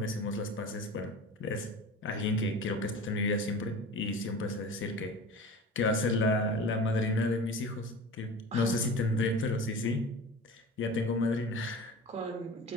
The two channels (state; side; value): normal; both; correlation 0.35